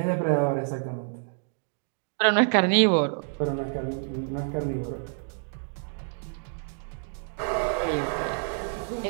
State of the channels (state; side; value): silent; left; 59 dB below the other